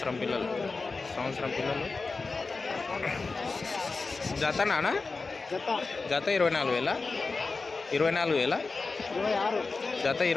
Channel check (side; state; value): right; quieter; 4.1 dB